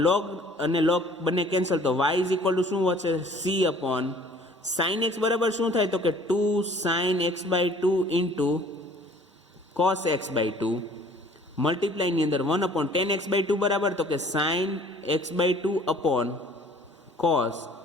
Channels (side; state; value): both; normal; correlation 0.53